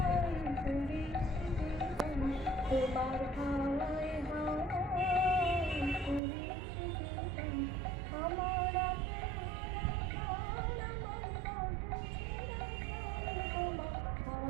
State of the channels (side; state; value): left; drops out; at 6.2 s